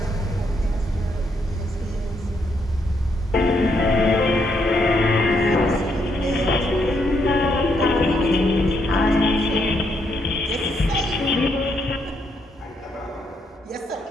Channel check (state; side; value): normal; both; correlation 0.76